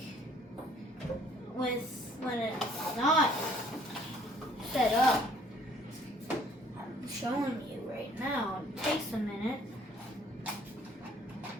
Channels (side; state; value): both; normal; correlation 0.59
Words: when it's not set up. I'm showing you right now. It takes a minute.